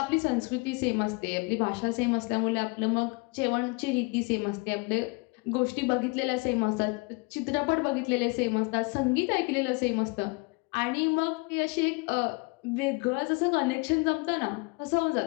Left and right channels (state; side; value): quieter; right; 28.2 dB